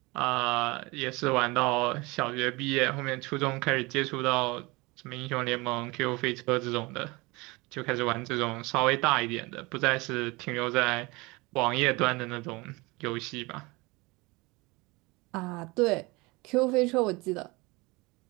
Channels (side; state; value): left; quieter; 24.3 dB